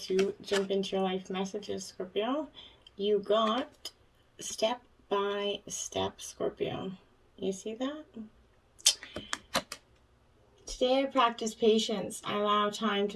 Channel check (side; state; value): both; identical; correlation 1.00